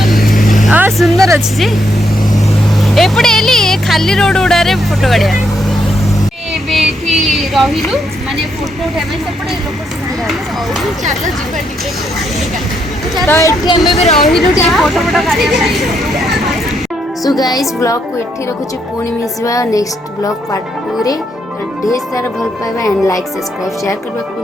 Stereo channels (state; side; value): normal; both; correlation 0.77